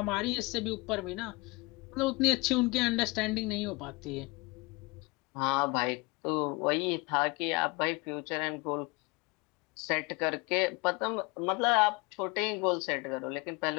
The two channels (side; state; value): right; quieter; 25.9 dB